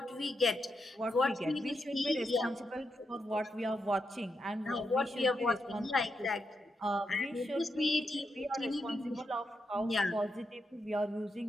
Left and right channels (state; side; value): normal; both; correlation 0.84